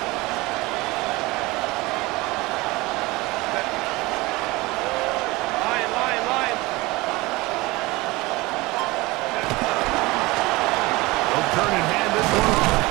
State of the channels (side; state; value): left; quieter; 21.9 dB